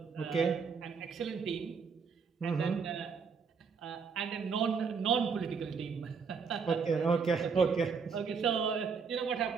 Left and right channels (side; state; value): left; quieter; 5.7 dB